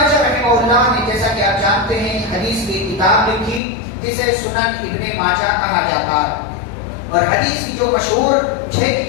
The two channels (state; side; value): drops out; right; at 3.6 s